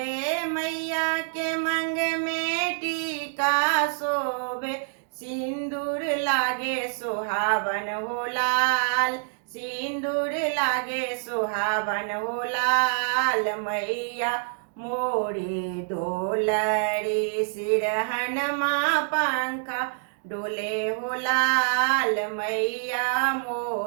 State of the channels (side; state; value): left; silent; digital silence